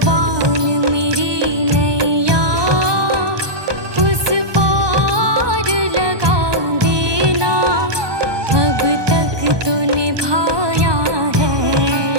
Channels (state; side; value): late; left; 1.2 ms